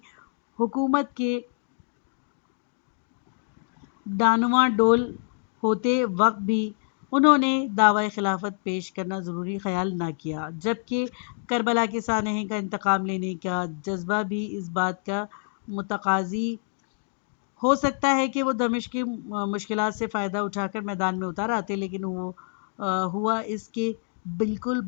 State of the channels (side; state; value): right; silent; digital silence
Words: حکومت کے ڈانواں ڈول ہوتے وقت بھی انہوں نے دعوی خلافت پیش کرنا ضروری خیال نہ کیا، جبکہ کربلا کے سانحے کا انتقام لینے کا جذبہ بھی اس بات کا متقاضی ہو سکتا ہے کہ وہ دمشق کی مشکلات سے فائدہ اٹھا کر میدان میں اتر آتے، لیکن وہ ہوا اس کے بالکل